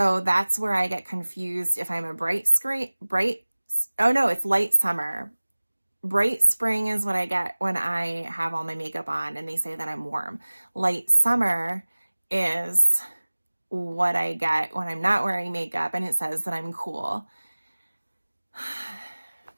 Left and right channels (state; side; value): inverted; both; correlation -1.00